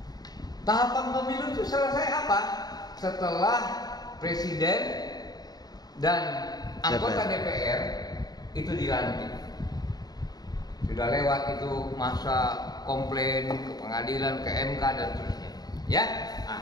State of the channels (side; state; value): right; late; 0.19 ms